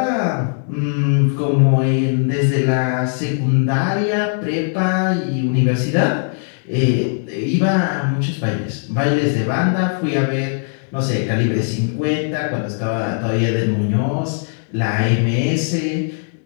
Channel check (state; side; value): silent; right; digital silence